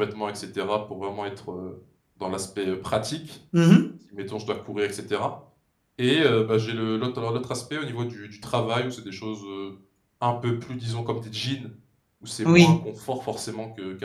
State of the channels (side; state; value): both; identical; correlation 1.00